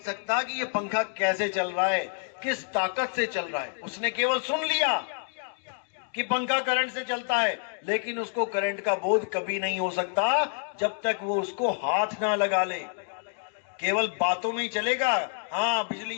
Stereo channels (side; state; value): right; silent; 59 dB below the other